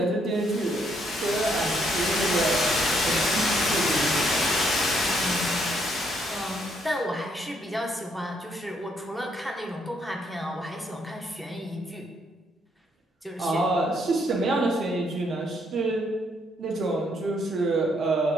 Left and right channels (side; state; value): both; normal; correlation 0.72